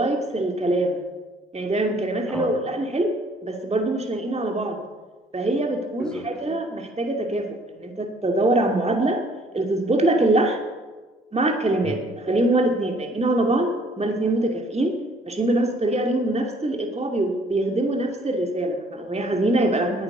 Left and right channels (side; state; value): both; normal; correlation 0.60